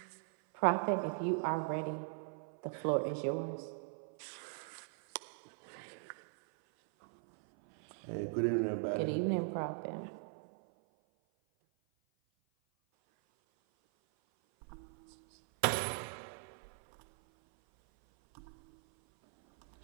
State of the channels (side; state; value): left; silent; 51 dB below the other